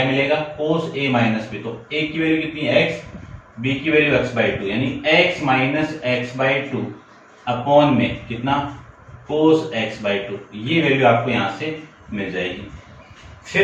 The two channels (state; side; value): identical; both; correlation 1.00